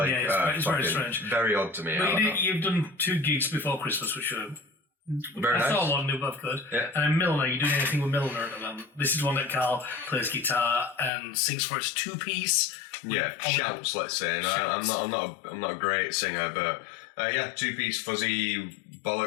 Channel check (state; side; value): drops out; right; at 11.1 s